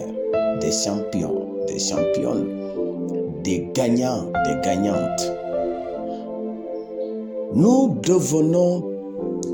des champions, des championnes, des gagnants, des gagnantes. Nous devenons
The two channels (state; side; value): identical; both; correlation 1.00